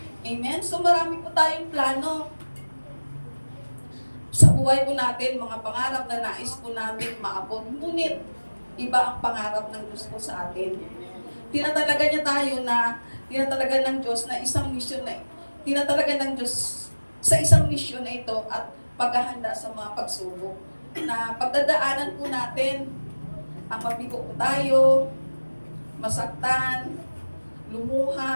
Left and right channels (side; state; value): both; inverted; correlation -1.00